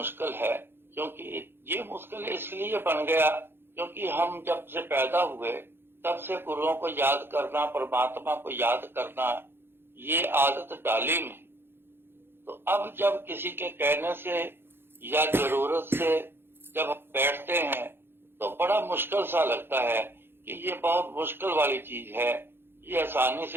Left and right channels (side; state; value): left; late; 0.11 ms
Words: है। क्योंकि ये मुश्किल इसलिए बन गया क्योंकि हम जब से पैदा हुए तब से गुरुओं को याद करना, परमात्मा को याद करना, ये आदत डाली नहीं। तो अब जब किसी के कहने से या जरूरत से जब हम बैठते हैं तो बड़ा मुश्किल सा लगता है कि ये बहुत मुश्किल वाली चीज है, ये आसानी